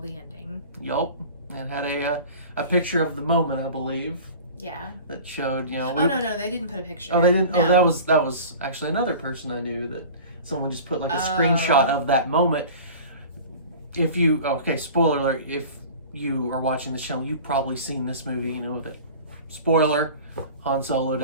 ending. Yup. And had a picture of the moment, I believe. Yeah. That showed, you know. Oh, no, they didn't put a picture. Oh, they didn't? No. Oh, that was actually another person I knew that someone just put like a screenshot of that moment. If you, okay, spoiler alert, if you are watching the show, you've probably seen this movie, you know, that, spoiler, Han Solo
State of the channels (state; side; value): inverted; both; correlation -0.39